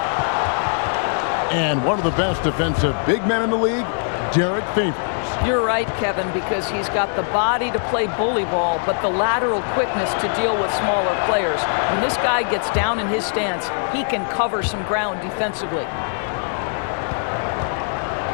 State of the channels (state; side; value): silent; right; digital silence